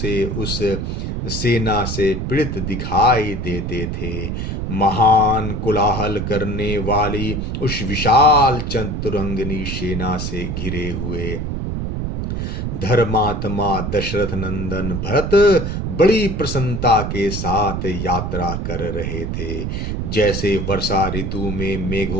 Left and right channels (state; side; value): noise; right; rumble, 3 dB below the sound